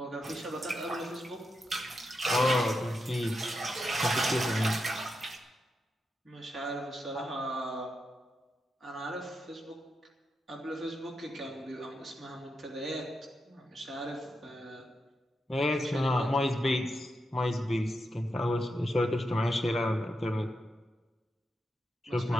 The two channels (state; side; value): normal; both; correlation 0.86